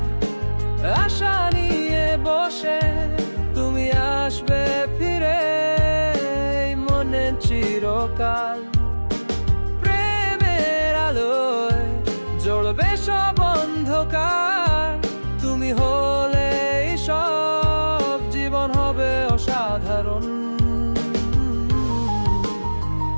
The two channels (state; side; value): inverted; both; correlation -1.00